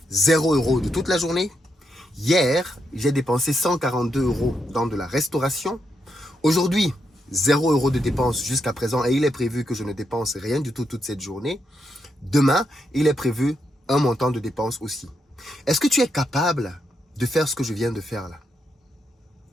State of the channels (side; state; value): both; normal; correlation 0.81